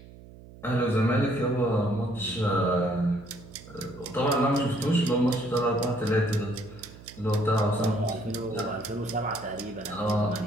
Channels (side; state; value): right; noise; hum, 19 dB below the sound